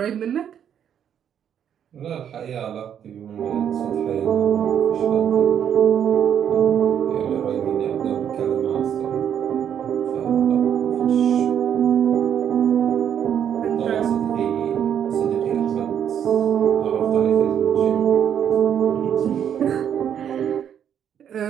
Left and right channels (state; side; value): quieter; left; 9.0 dB